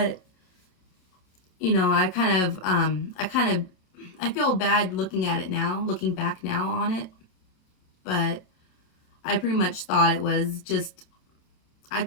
you know, I feel bad looking at it now, looking back now on it. But I pretty much thought it was just, I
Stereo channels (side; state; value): right; late; 37 ms